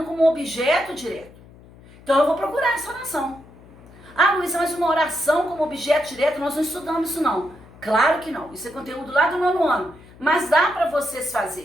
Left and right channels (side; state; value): left; noise; hum, 22 dB below the sound